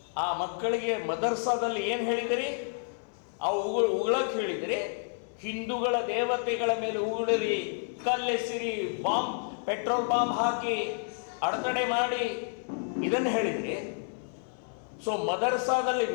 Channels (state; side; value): silent; right; 58 dB below the other